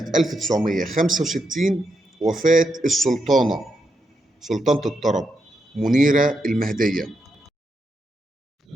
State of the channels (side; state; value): both; normal; correlation 0.82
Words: 1965 وفاة سلطانة الطرب منيرة المهدية.